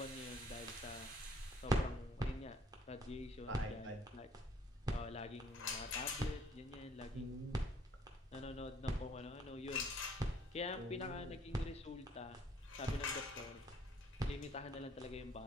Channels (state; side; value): normal; both; correlation 0.61